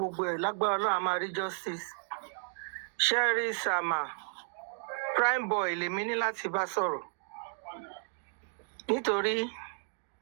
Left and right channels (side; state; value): left; silent; digital silence